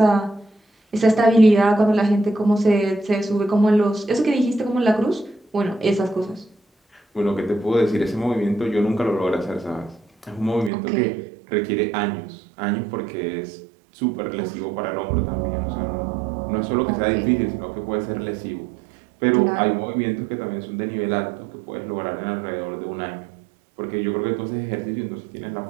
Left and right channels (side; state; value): left; drops out; at 10.7 s